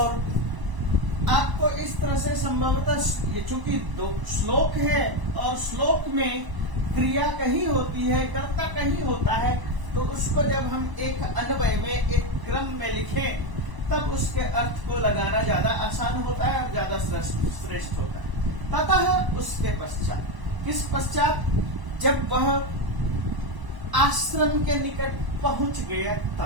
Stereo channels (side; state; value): left; late; 1.0 ms